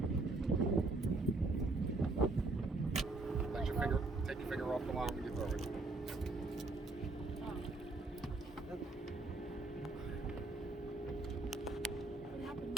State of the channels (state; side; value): quieter; left; 3.4 dB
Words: There you go. Take your finger off the line when you throw it. What happened